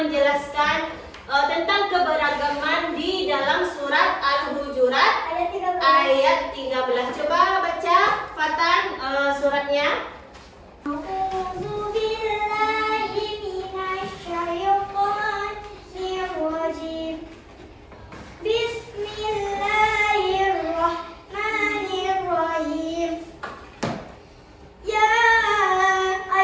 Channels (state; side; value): identical; both; correlation 1.00